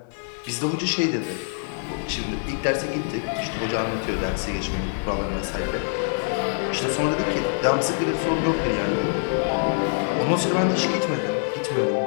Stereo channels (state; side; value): silent; right; 62 dB below the other